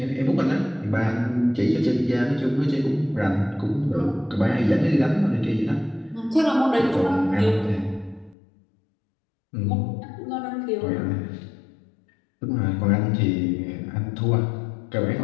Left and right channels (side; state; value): right; drops out; at 8.3 s